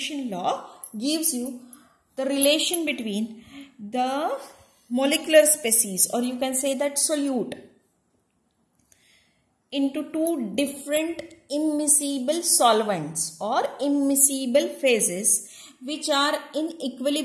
law gives you the relation between the molecular species, or you can say that solute, into two different immiscible solvents or immiscible phases which are in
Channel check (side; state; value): both; identical; correlation 1.00